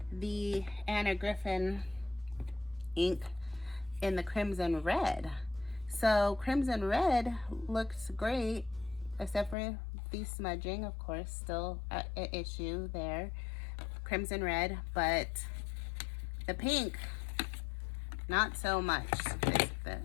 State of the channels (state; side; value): drops out; right; at 9.6 s